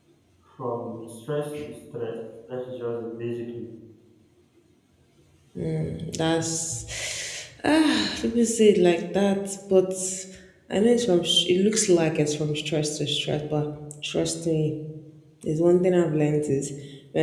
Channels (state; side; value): identical; both; correlation 1.00